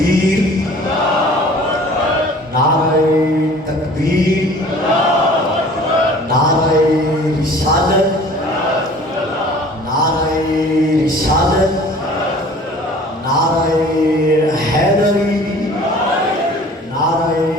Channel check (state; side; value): normal; both; correlation 0.48